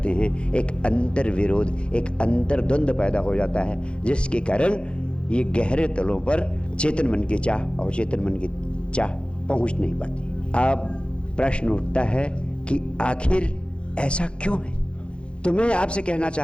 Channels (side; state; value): right; late; 0.057 ms